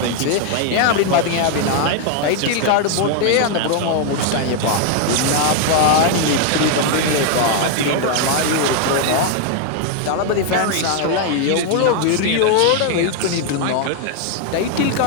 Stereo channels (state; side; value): different; both; correlation 0.00